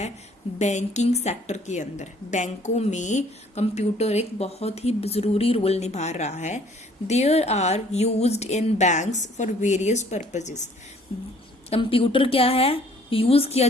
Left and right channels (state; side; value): normal; both; correlation 0.58